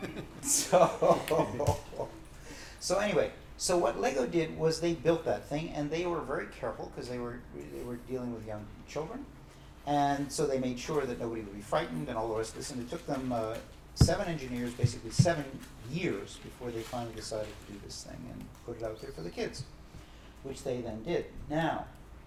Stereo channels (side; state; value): both; identical; correlation 1.00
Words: so anyway, so what Lego did was they built that thing, and they were very careful because they were dealing with young children, and so they made sure that nobody would be frightened and all the rest of this. And it took them 7 engineers, basically 7 years, before they finally decided to do this thing and put it out there for the kids, which they then did. Now,